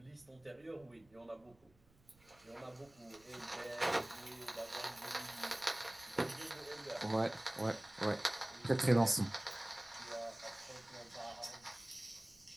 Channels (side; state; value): right; noise; rumble, 29 dB below the sound